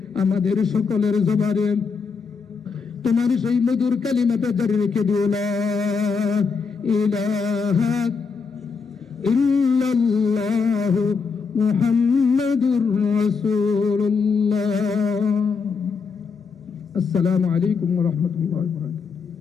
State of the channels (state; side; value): quieter; right; 5.2 dB